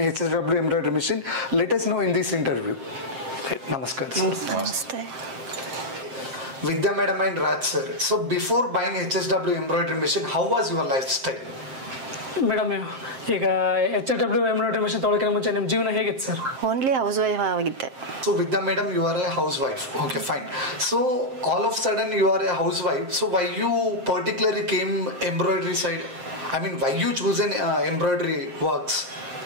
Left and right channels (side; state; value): left; late; 7.6 ms